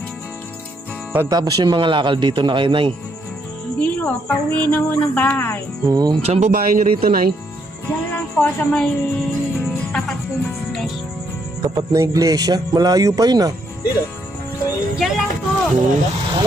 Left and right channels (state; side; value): normal; both; correlation 0.74